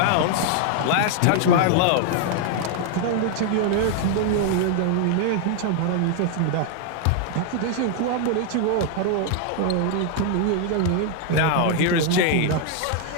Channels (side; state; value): both; different; correlation 0.00